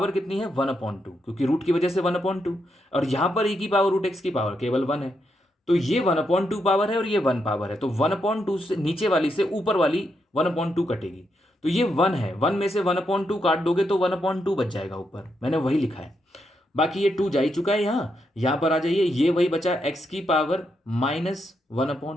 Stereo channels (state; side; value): normal; both; correlation 0.81